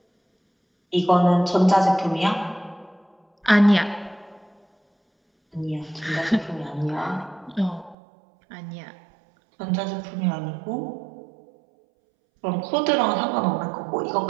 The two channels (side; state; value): left; drops out; at 8.0 s